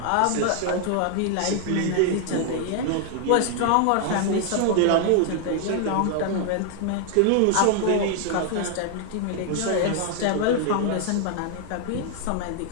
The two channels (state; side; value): different; both; correlation 0.00